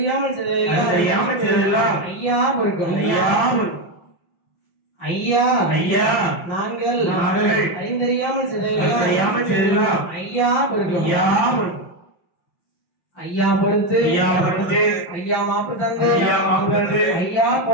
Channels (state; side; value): late; right; 5.8 ms